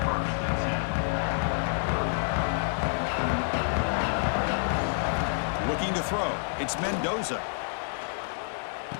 Looking to throw. It's Mendoza.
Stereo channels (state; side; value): silent; right; 59 dB below the other